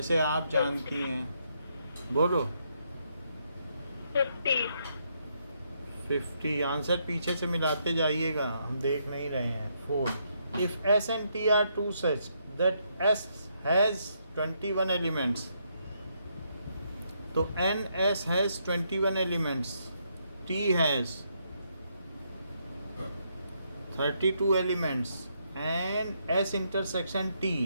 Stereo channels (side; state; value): both; inverted; correlation -0.76